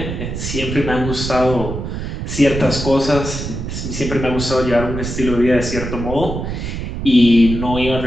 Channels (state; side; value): noise; right; rumble, 5 dB below the sound